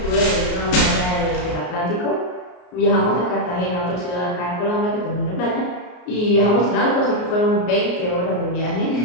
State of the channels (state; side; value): late; right; 33 ms